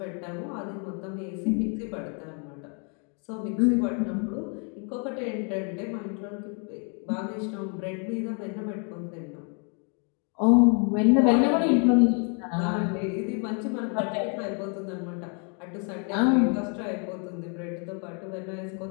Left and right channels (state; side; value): quieter; right; 38.8 dB